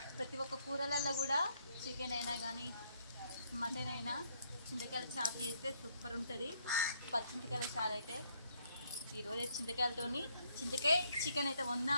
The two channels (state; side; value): inverted; both; correlation -0.71